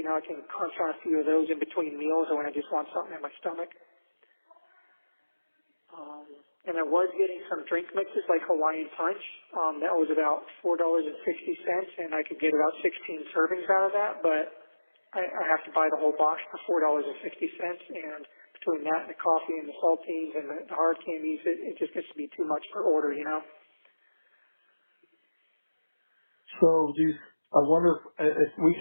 can crunch on a few of those in between meals or when I just want something in my stomach. And I was getting some drink mixes like Hawaiian Punch. That was about $4.60, and I could get about 16 servings out of that, but I have to buy the whole box for $4.60, and between that and the coffee and the saltines and the hard candies, it just gets to be too much per order, So I wonder if we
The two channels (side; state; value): both; inverted; correlation -1.00